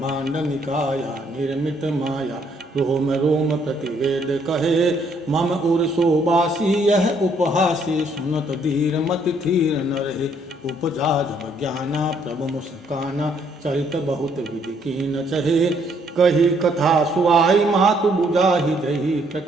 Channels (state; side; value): normal; both; correlation 0.68